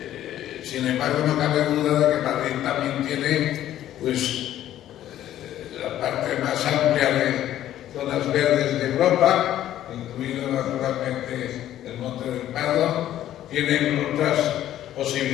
Sin embargo, no cabe duda de que Madrid también tiene la parte más amplia de zonas verdes de Europa, incluido naturalmente el Monte del Pardo. Tienen otras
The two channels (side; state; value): right; quieter; 12.4 dB